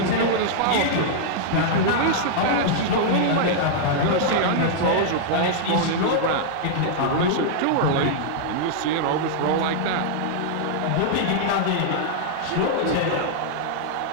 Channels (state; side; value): different; both; correlation -0.01